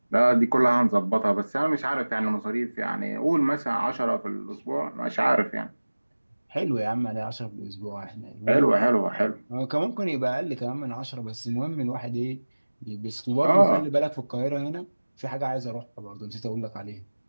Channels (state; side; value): inverted; both; correlation -1.00